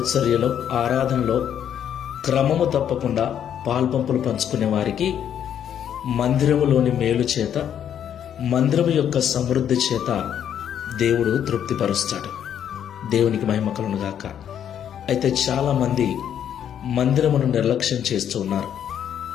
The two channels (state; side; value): quieter; right; 9.4 dB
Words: ఆరాధనలో క్రమము తప్పకుండా పాల్పంపులు పంచుకునే వారికి మందిరములోని మేలు చేత, మందిరము యొక్క సమృద్ధి చేత దేవుడు తృప్తిపరుస్తాడు. దేవునికి మహిమ కలుగును గాక. అయితే చాలా మంది మందిరమును నిర్లక్ష్యం చేస్తూ ఉన్నారు.